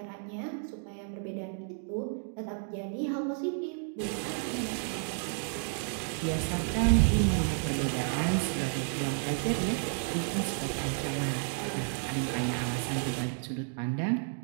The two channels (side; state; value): left; silent; 57 dB below the other